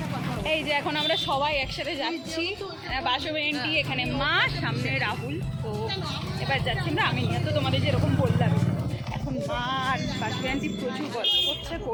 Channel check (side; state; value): both; identical; correlation 1.00